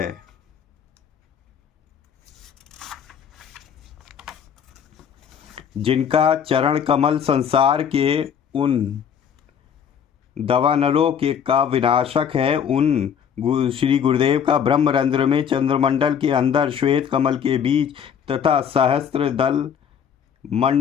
जिनका चरण कमल संसार के उन दवानलों के का विनाशक है, उन श्री गुरुदेव का ब्रह्मरंध्र में चंद्रमंडल के अंदर श्वेत कमल के बीच तथा सहस्त्र दल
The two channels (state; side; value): quieter; right; 7.9 dB